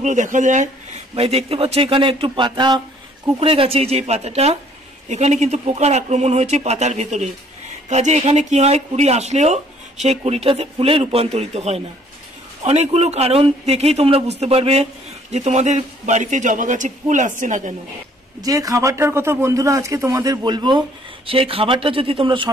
দেখা যায়। ভাই দেখতে পাচ্ছ এখানে একটু পাতা কুকড়ে গেছে, যে পাতাটা এখানে কিন্তু পোকার আক্রমণ হয়েছে পাতার ভেতরে। কাজে এখানে কি হয়, কুড়ি আসলেও সেই কুড়িটাতে ফুলে রূপান্তরিত হয় না। অনেকগুলো কারণ দেখেই তোমরা বুঝতে পারবে যে তোমাদের বাড়িতে জবা গাছে ফুল আসছে না কেন। যে খাবারটার কথা বন্ধুরা আজকে তোমাদের বলবো, সেই খাবারটা যদি তোমরা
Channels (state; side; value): normal; both; correlation 0.60